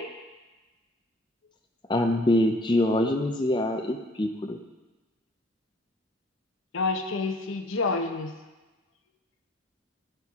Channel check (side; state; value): both; normal; correlation 0.55